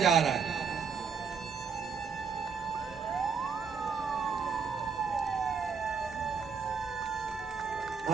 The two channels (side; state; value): left; quieter; 6.0 dB